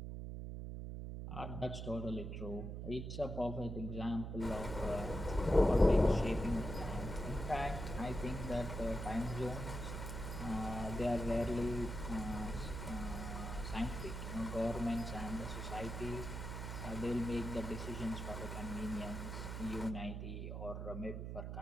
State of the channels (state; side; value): noise; right; hum, 5 dB below the sound